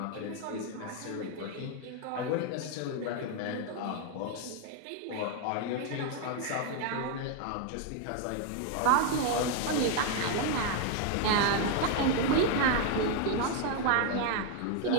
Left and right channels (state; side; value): different; both; correlation 0.01